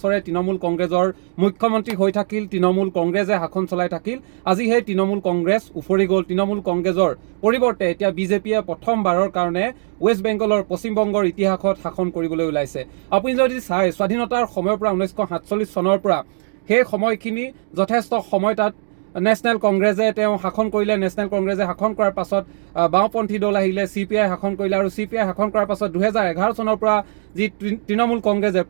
তৃণমূল কংগ্ৰেছৰ মুখ্যমন্ত্ৰী হৈ থাকিল, তৃণমূল কংগ্ৰেছে শাসন চলাই থাকিল। আজি সেই তৃণমূল কংগ্ৰেছ উফৰি গ'ল। তৃণমূল কংগ্ৰেছৰ পৰিৱৰ্তে এতিয়া বিজেপিয়ে প্ৰথমবাৰৰ কাৰণে ৱেষ্ট বেংগলৰ পশ্চিমবংগৰ ইতিহাসত শাসন কৰিবলৈ ওলাইছে। আপুনি যদি চাই স্বাধীনতাৰ সময়ৰ পৰা 1947 চনৰ পৰা সেই সময়খিনি যথেষ্ট সময় তাত নেশ্যনেল কংগ্ৰেছে তেওঁ শাসন কৰিলে। নেশ্যনেল কংগ্ৰেছে শাসন কৰাৰ পাছত বাওঁপন্থী দল আহিলে, CPI শাসন কৰিলে আৰু CPI শাসন কৰাৰ পাছত 2011 চনৰ পৰা যি তৃণমূল কংগ্ৰেছে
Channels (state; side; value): silent; left; digital silence